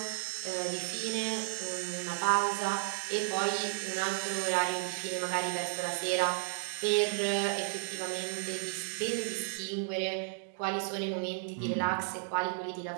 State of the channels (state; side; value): silent; left; digital silence